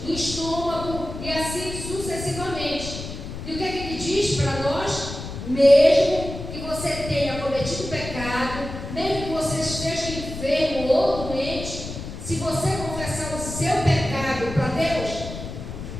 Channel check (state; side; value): noise; left; rumble, 9 dB below the sound